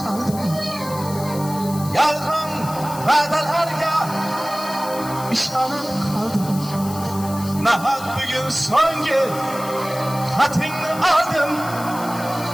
Yalgın vadalarla işanıp kaldım. Nahak bugün son gün hatırını aldım.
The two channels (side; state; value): left; noise; hiss, 14 dB below the sound